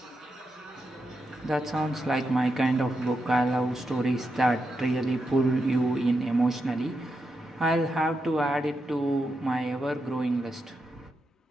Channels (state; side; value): normal; both; correlation 0.86